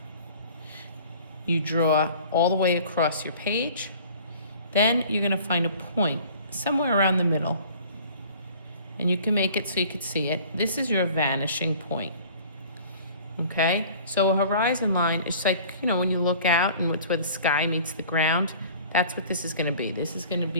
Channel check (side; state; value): both; inverted; correlation -0.48